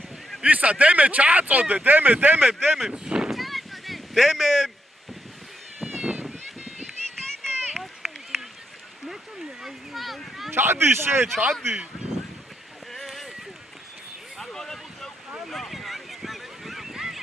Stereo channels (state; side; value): normal; both; correlation 0.80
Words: ისა დემე ჩააწოდე, დემე. დემე. ჩადი შე, ჩადი.